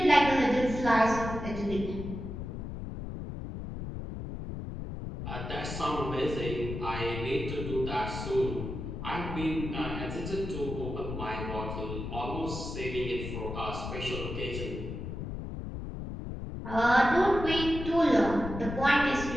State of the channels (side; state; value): left; noise; rumble, 7 dB below the sound